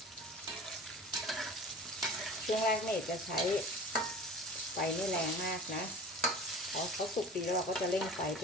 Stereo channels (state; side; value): normal; both; correlation 0.39